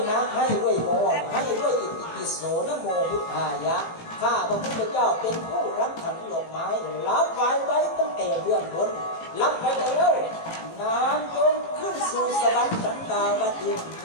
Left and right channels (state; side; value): late; right; 18 ms